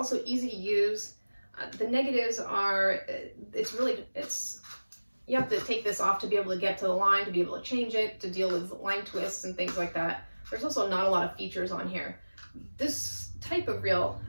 easy to use. The negatives are you have to take this off to be able to get to the line, to be able to change it, to deal with line twists and things like that. There's also not a lot of features on here. This type of reel,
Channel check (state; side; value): inverted; both; correlation -1.00